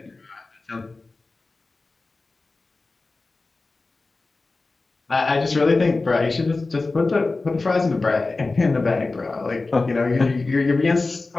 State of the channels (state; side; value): quieter; right; 3.5 dB